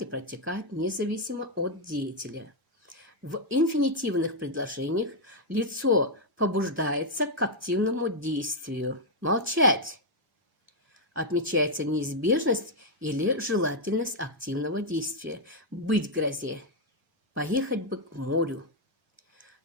и протекает независимо от деятеля. В инфинитивных предложениях лицо побуждается к активному действию. Молчать. Отмечается неизбежность или желательность активного действия. Быть грозе. Поехать бы к морю.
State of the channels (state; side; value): normal; both; correlation -0.01